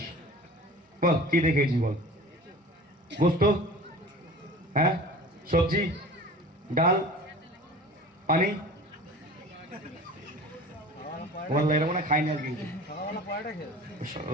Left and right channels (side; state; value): both; normal; correlation 0.40